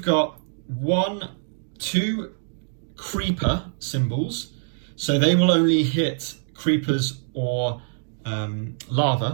got 2 creeper symbols. So they will only hit creepers or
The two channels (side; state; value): left; silent; digital silence